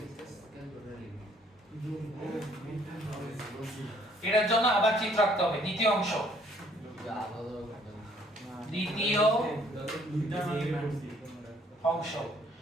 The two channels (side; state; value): both; normal; correlation 0.62